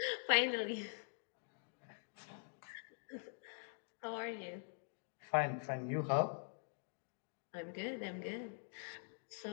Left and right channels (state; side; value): silent; right; digital silence